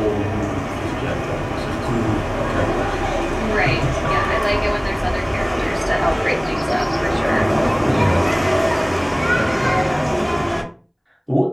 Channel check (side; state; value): both; identical; correlation 1.00